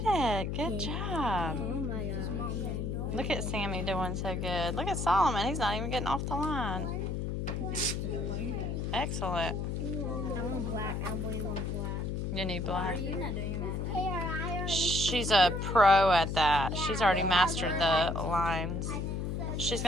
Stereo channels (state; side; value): noise; left; hum, 2 dB below the sound